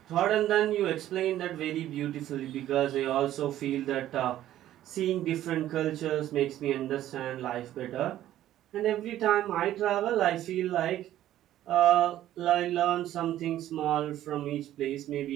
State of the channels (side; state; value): left; quieter; 12.9 dB